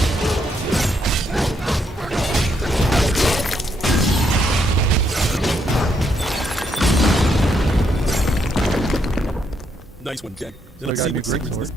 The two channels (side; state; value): both; normal; correlation 0.76